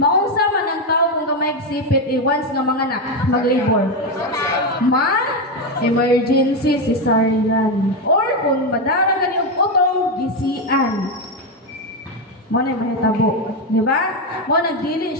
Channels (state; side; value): normal; both; correlation 0.09